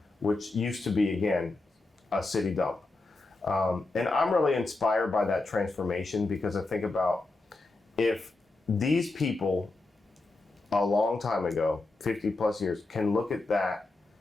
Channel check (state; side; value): quieter; right; 3.3 dB